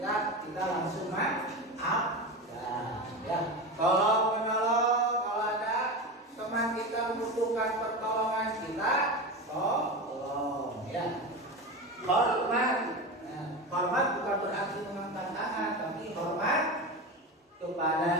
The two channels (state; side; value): normal; both; correlation 0.23